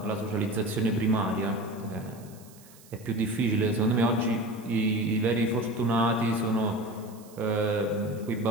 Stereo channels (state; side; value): noise; right; hiss, 24 dB below the sound